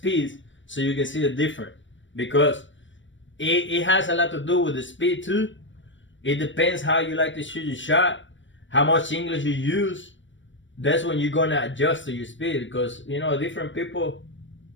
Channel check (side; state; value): right; late; 0.55 ms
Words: so you can see the difference. Because it has a lot to do with the speed too. It depends how you like to shoot your shot, how much English you use. That's when you're gonna adjust to your speed, because you know, different people,